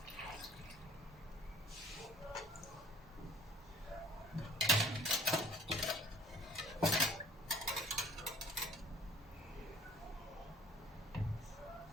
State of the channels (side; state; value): both; normal; correlation 0.54